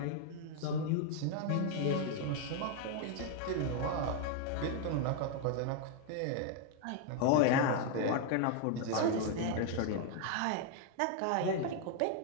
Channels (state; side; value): different; both; correlation 0.00